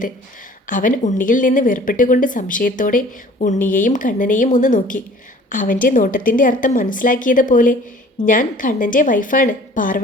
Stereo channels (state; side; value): normal; both; correlation 0.50